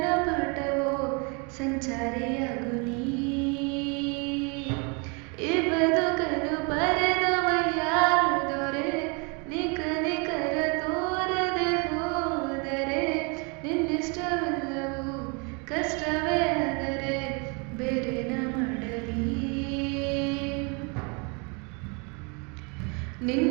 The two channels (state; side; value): quieter; left; 32.8 dB